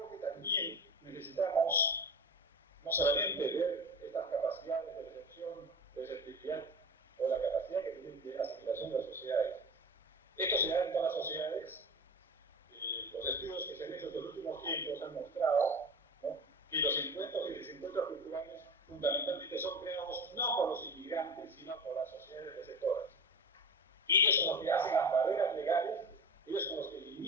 que también necesitamos no solamente ver estas capacidades de recepción, de receptividad o la capacidad que tienen de asimilación de las sociedades. Esto se da en todas las sociedades. Los estudios que se han hecho en los últimos tiempos han mostrado, ¿no?, que los encuentros y desencuentros culturales fundamentalmente son creados no por los inmigrantes, sino por las sociedades receptoras. Ellos son los que hacen las barreras legales, ellos son los que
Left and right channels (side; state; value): both; normal; correlation 0.31